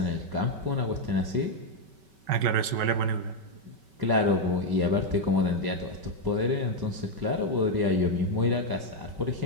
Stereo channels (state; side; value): late; left; 5.2 ms